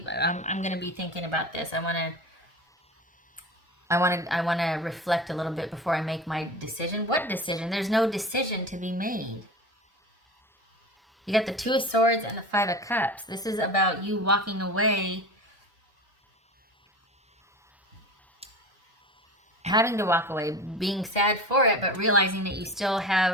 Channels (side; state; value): both; normal; correlation 0.32